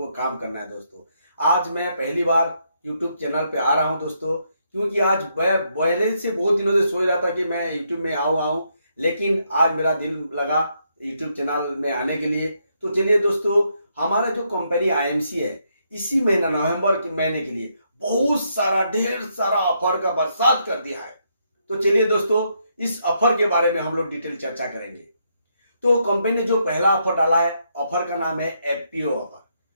काम करना है दोस्तों। आज मैं पहली बार यूट्यूब चैनल पे आ रहा हूं दोस्तों, क्योंकि आज मैं पहले से बहुत दिनों से सोच रहा था कि मैं यूट्यूब में आऊं, लेकिन आज मेरा दिल लगा यूट्यूब चैनल में आने के लिए। तो चलिए दोस्तों, हमारा जो कंपनी आईएमसी है, इसी महीना नवंबर के महीने के लिए बहुत सारा ढेर सारा ऑफर का बरसात कर दिया है। तो चलिए दोस्तों, इस ऑफर के बारे में हम लोग डिटेल चर्चा करेंगे। तो कंपनी ने जो पहला ऑफर डाला है, ऑफर का नाम है एफपीओ ऑफर,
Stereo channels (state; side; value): inverted; both; correlation -0.76